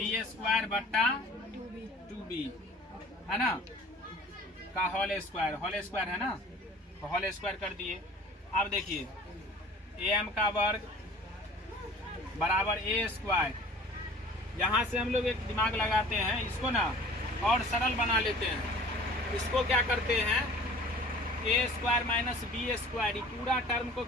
square बट्टा 2b है ना, का होल स्क्वायर है ना। तो होल स्क्वायर कर दिए। अब देखिए am का वर्ग बराबर ए स्क्वायर, यहाँ से हम लोग एक दिमाग लगाते हैं, इसको ना और सरल बना लेते हैं। इसको क्या करते हैं, ए स्क्वायर माइनस बी स्क्वायर, पूरा टर्म को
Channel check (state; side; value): normal; both; correlation 0.46